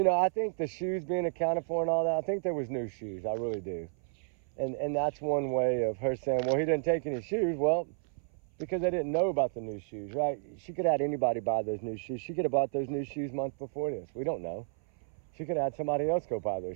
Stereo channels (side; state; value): left; silent; 57 dB below the other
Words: know, I think the shoes being accounted for and all that, I think there was new shoes. I really do. And that's one way of her saying, well, he didn't take any shoes. Well, because I didn't know about the new shoes, right? She could have had anybody buy those new shoes. She could have bought those new shoes months before this. We don't know. She could have had somebody else go buy